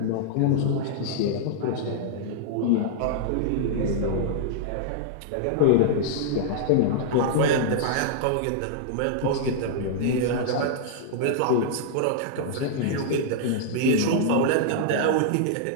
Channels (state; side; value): different; both; correlation -0.02